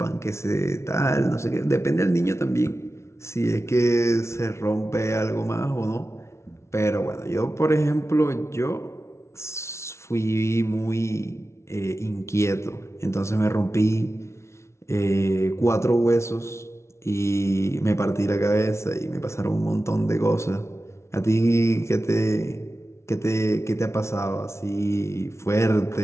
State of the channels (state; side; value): late; right; 0.13 ms